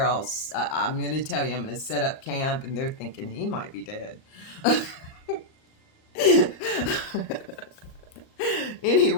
I'm going to tell you, I'm going to set up camp. And they're thinking he might be dead.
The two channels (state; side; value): late; right; 38 ms